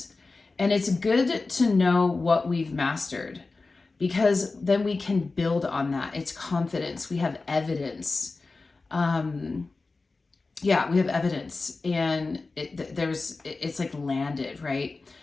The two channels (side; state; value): right; quieter; 3.7 dB